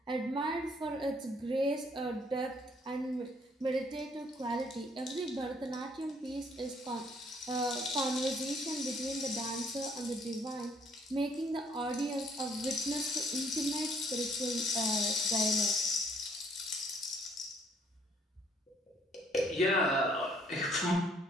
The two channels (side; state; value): both; normal; correlation 0.64